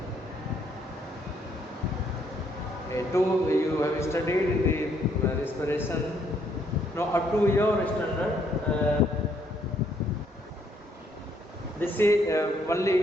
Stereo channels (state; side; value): normal; both; correlation 0.69